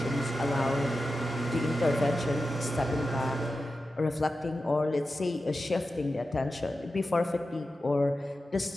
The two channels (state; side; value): normal; both; correlation 0.92